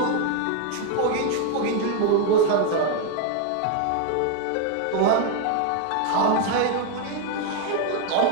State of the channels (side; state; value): both; different; correlation 0.01